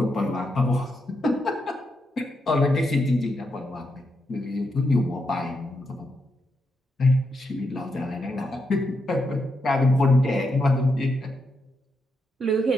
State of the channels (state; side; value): normal; both; correlation 0.83